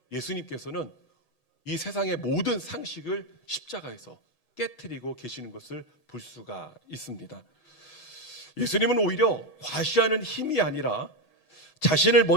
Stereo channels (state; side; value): late; right; 8.1 ms